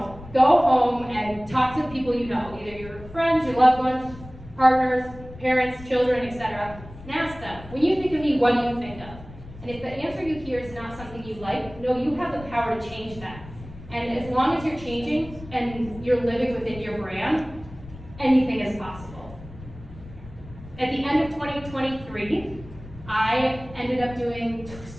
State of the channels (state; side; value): noise; left; rumble, 16 dB below the sound